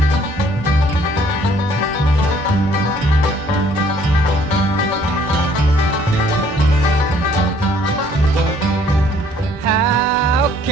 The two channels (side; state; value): both; normal; correlation 0.61